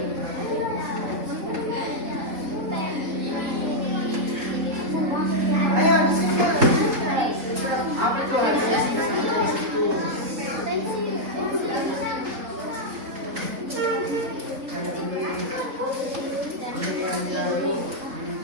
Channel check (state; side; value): late; left; 3.8 ms